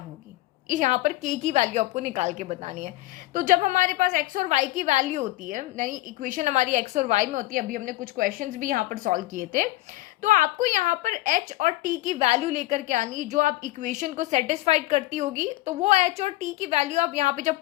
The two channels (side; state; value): right; quieter; 18.2 dB